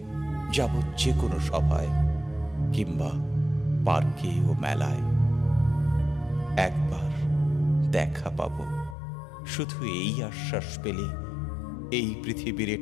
যাব যে কোনো সভায়, কিংবা পার্কে ও মেলায়। একবার দেখা পাব, শুধু এই আশ্বাস পেলে এই পৃথিবীর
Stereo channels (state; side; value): drops out; right; at 9.0 s